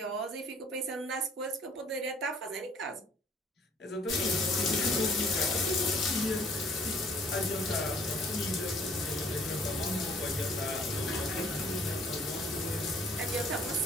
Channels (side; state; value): both; normal; correlation 0.58